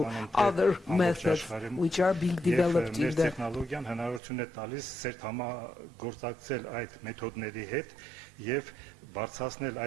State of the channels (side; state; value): left; drops out; at 4.2 s